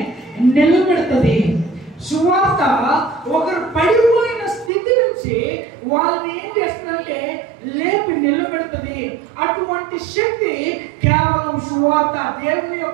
నిలబెడుతుంది. సువార్త ఒకరు పడిపోయిన స్థితి నుంచి వాళ్ళని ఏం చేస్తుందంటే లేపి నిలబెడుతుంది. అటువంటి శక్తి కేవలం సువార్త, దేవుని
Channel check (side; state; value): left; drops out; at 4.7 s